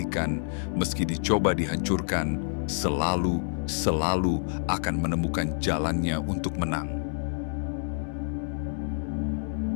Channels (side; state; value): right; silent; 59 dB below the other